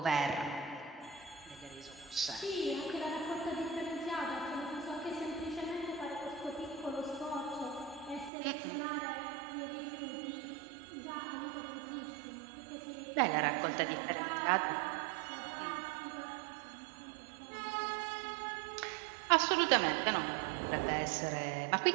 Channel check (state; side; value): drops out; left; at 8.3 s